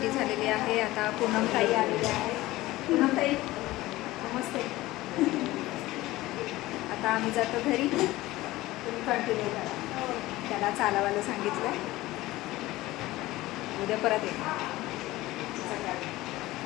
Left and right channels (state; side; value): quieter; right; 17.9 dB